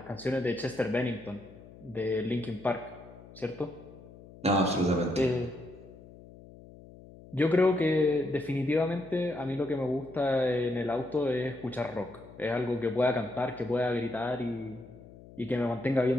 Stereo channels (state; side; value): noise; left; hum, 19 dB below the sound